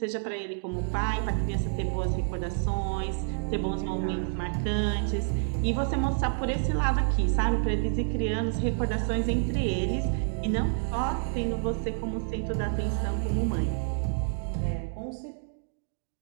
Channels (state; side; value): silent; left; digital silence